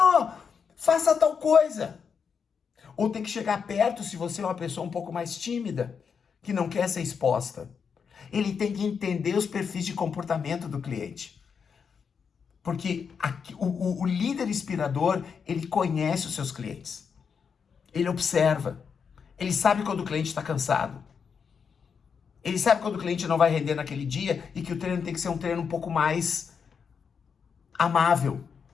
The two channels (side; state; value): right; quieter; 6.3 dB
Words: faça tal coisa. Ou tem que chegar perto se você é uma pessoa um pouco mais tímida, que não quer ser exposta. Ele tem que entender os perfis de comportamento do cliente. Porque o líder inspirador, ele conhece os seus clientes. Ele observa. Ele sabe quando o cliente está cansado. Ele sabe quando o cliente não vai render naquele dia e que o treino tem que ser um treino um pouco mais amável,